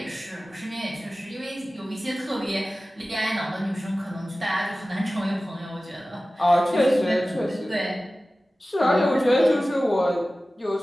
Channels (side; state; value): both; normal; correlation 0.96